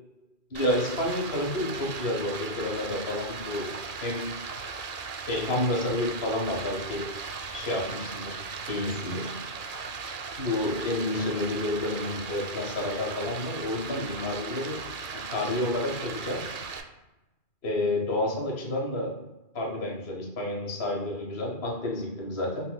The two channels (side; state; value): right; late; 2.4 ms